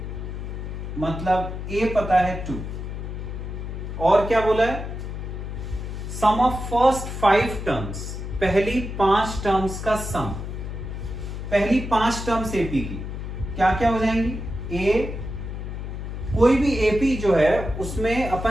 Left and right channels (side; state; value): left; noise; hum, 6 dB below the sound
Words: मतलब ए पता है 2, और क्या बोला है, सम ऑफ फर्स्ट 5 टर्म्स, पहली 5 टर्म्स का सम, पहली 5 टर्म्स एपी की क्या क्या हो जाएंगी। ए, कोई भी एपी जो है उसमें